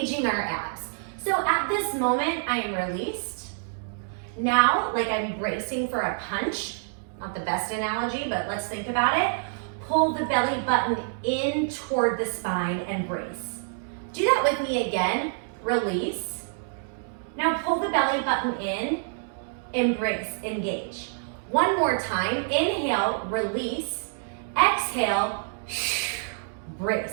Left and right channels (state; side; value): silent; left; digital silence